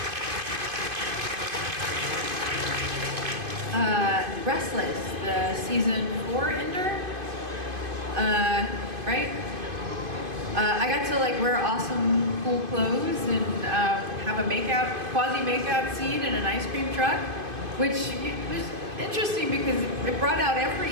Restless, the season 4 ender, right? I got to like wear awesome cool clothes and have a quasi makeout scene in an ice cream truck, which was interesting because it brought out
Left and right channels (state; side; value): late; left; 2.5 ms